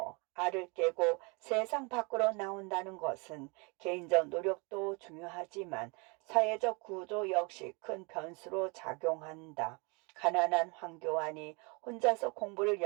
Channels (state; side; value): quieter; left; 29.5 dB